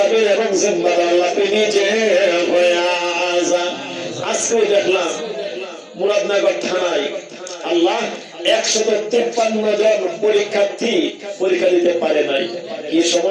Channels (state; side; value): identical; both; correlation 1.00